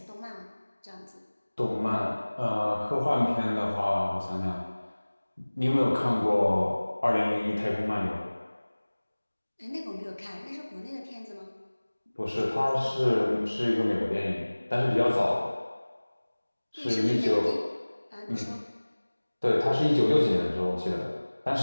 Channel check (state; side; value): inverted; both; correlation -1.00